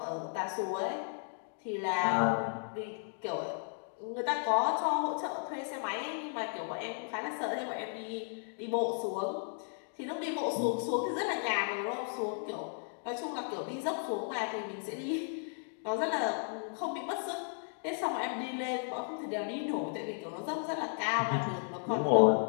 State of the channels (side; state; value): right; silent; 55 dB below the other